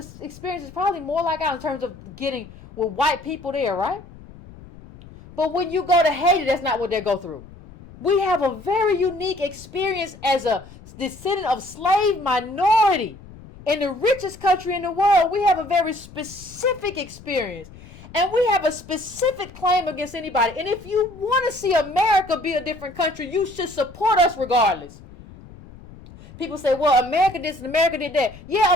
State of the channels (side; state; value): left; noise; rumble, 19 dB below the sound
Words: experience is probably more like ours in terms of getting with white people there, right? But when you go to Haiti, that's not what they go through. We have a very unique experience as a descendant of slave minority in the richest country in the world. We have a very specific experience. And we have a specific claim against anybody. And if you want to see America be a different country, you should support us regardless. People say, well, America did this and America did that. Yeah,